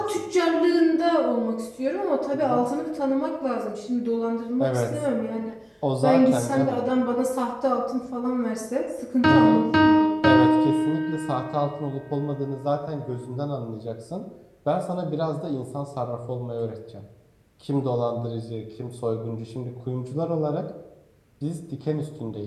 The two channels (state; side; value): identical; both; correlation 1.00